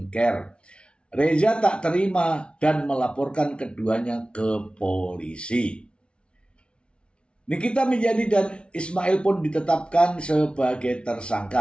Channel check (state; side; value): late; right; 0.058 ms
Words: Reza tak terima dan melaporkan keduanya ke polisi. Nikita Mirjani dan Ismail pun ditetapkan sebagai